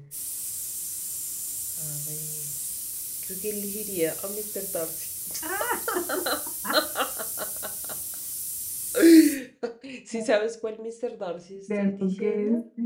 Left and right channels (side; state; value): both; identical; correlation 1.00